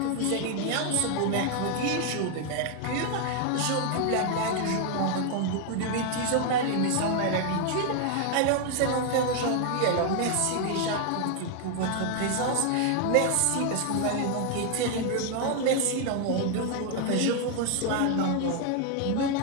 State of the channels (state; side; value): different; both; correlation 0.00